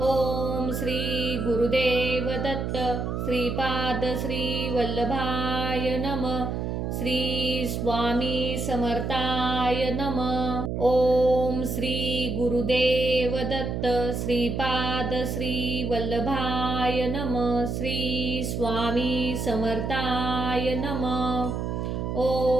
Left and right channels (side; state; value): right; noise; hum, 2 dB below the sound